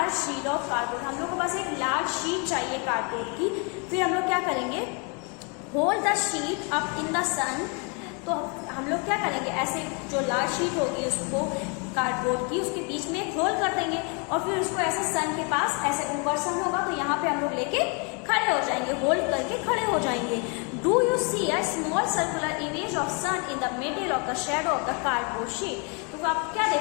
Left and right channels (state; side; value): quieter; right; 34.5 dB